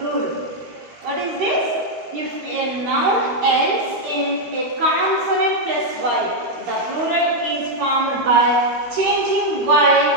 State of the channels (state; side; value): late; left; 13 ms